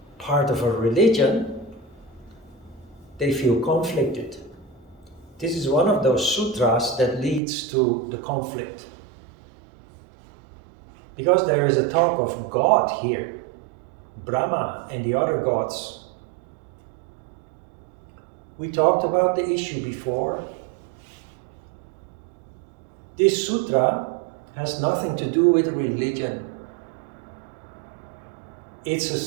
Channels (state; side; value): drops out; left; at 7.4 s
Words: part of a religion, they feel conflicted. This is one of those sutras that leads to the conflict. Because there is a talk of God here, Brahma and the other gods. We talked about the issue before. This sutra has nothing to do with religion. It's a